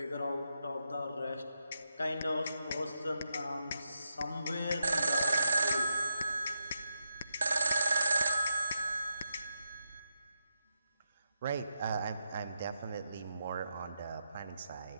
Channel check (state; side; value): inverted; both; correlation -0.85